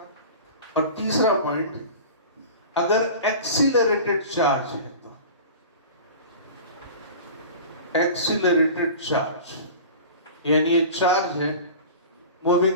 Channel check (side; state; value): both; inverted; correlation -0.37